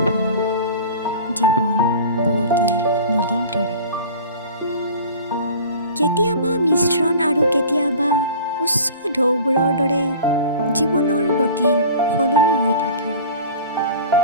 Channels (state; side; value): inverted; both; correlation -0.41